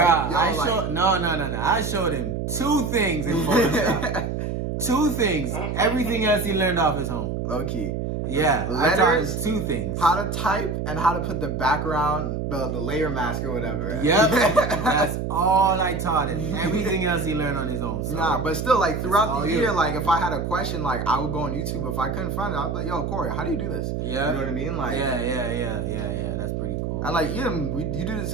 Bruh, yo, like... no. I showed him 2 things in Photoshop. 2 things. Everything else he learned off his home. Low-key. Yeah. I taught Letters, him 2 things. how to type and how to put the background, the layer mask or whatever. Yep. That's all I taught him. Everything else he learned on his own. So. Nah, but still, like, throughout all the you. year, like, if I had a question, like, I would go on YouTube. If I couldn't find it, I'd be like, yo, Corey, how do you do this? Yeah. You know what I mean? Like, Yeah. That's pretty cool. and like Edom, you do the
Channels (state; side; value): noise; right; hum, 3 dB below the sound